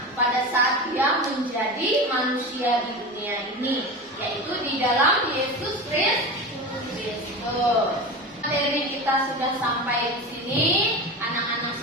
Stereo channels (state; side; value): normal; both; correlation 0.27